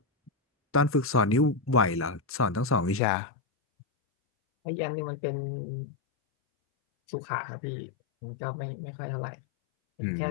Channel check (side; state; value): right; drops out; at 3.0 s